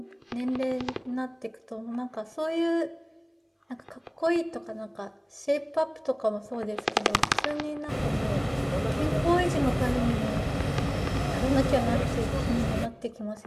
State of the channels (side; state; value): both; identical; correlation 1.00